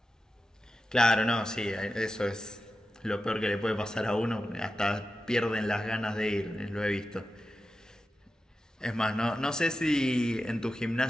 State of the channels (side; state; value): both; normal; correlation 0.92